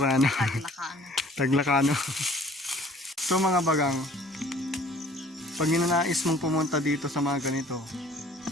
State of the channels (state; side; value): normal; both; correlation 0.53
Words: Taglakano. So mga bagang, pag ninanais mong pumunta dito sa mga ganito,